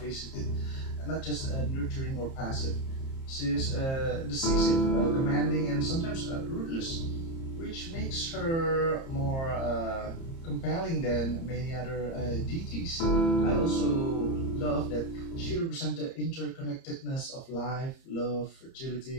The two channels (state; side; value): late; right; 30 ms